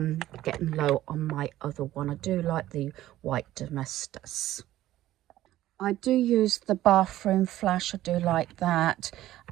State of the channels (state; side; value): quieter; left; 14.4 dB